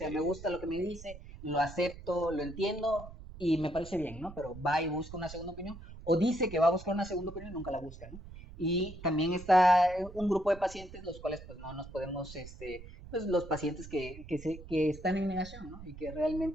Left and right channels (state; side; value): noise; right; rumble, 15 dB below the sound